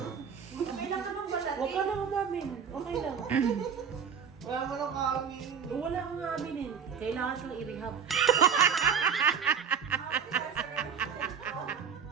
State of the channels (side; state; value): left; quieter; 7.0 dB